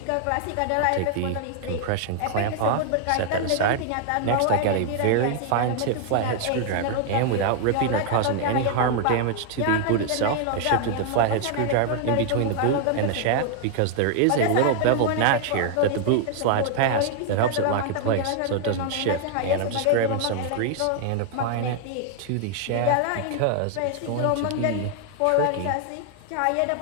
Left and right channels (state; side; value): different; both; correlation 0.00